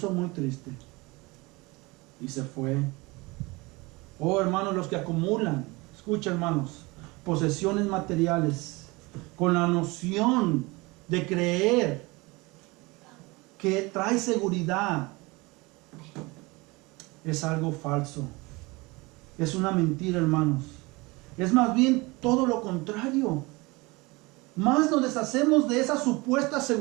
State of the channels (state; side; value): quieter; left; 24.1 dB